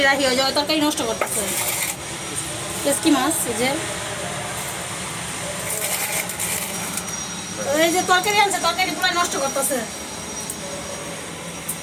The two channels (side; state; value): both; identical; correlation 1.00